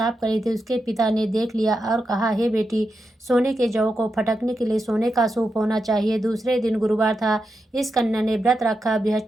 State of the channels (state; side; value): normal; both; correlation 0.87